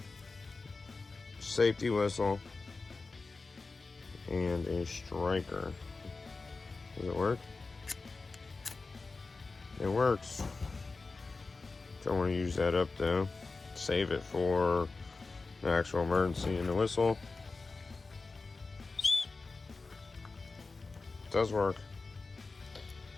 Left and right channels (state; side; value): quieter; right; 3.9 dB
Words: Safety whistle and a striker. Does it work? It works. Don't want to use that up though. Save it for an actual emergency. And the whistle does work.